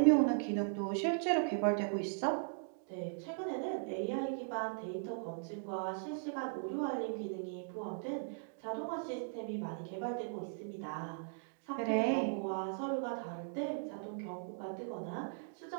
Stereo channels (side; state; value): left; silent; digital silence